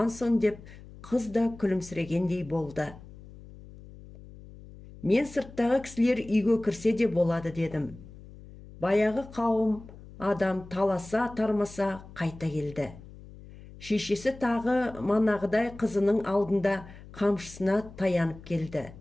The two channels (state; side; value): noise; left; hum, 18 dB below the sound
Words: сон деп, қыз да күлімсірегендей болды. Мен сырттағы кісілер үйге кірсе де болады дедім. Баяғы қауым адам таласа тармаса қайта келді. Шешесі тағы манағыдай қызының алдында қамшысына таянып келді.